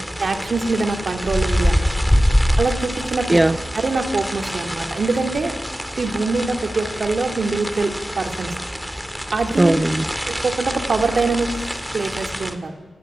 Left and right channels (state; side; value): normal; both; correlation 0.95